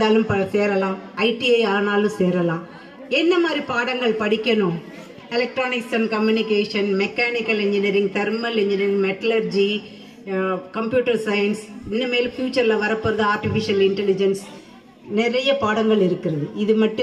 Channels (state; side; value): identical; both; correlation 1.00